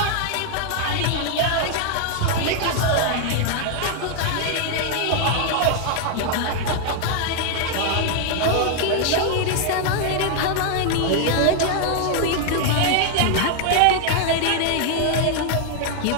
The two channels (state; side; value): different; both; correlation 0.00